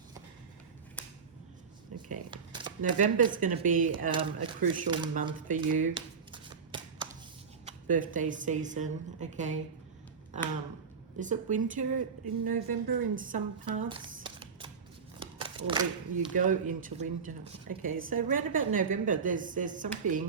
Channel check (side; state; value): left; quieter; 5.8 dB